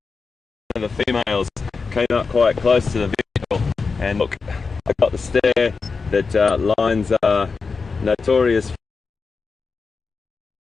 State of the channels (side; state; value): right; quieter; 4.7 dB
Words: The females came up quite close to the vehicle, and look, I got the stare that lions are notorious